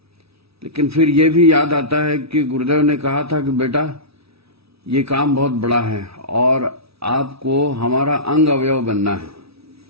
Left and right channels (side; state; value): left; late; 0.77 ms